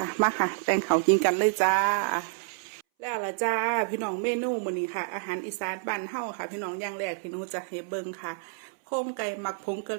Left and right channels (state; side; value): silent; left; 59 dB below the other